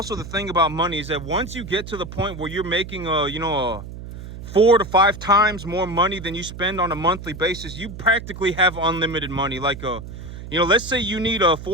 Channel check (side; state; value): right; noise; hum, 11 dB below the sound